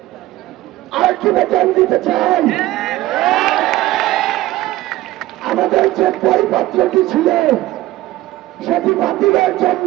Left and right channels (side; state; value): left; quieter; 16.6 dB